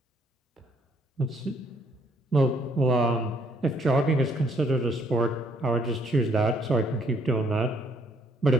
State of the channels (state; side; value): normal; both; correlation 0.67